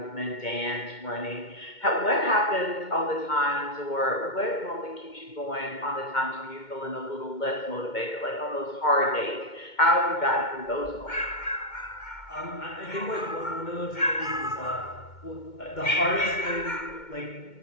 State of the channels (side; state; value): right; late; 2.2 ms